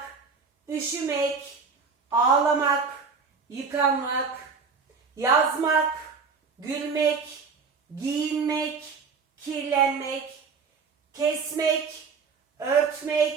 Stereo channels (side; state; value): left; quieter; 5.2 dB